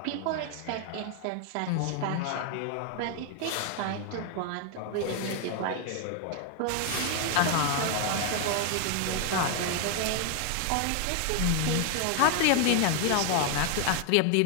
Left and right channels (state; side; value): different; both; correlation 0.00